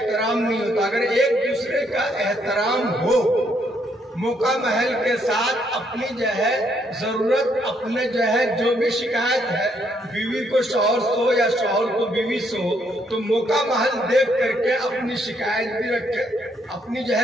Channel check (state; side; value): normal; both; correlation 0.72